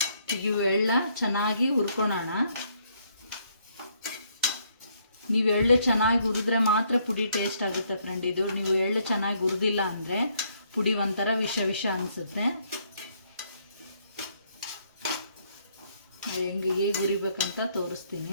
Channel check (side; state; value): both; inverted; correlation -0.70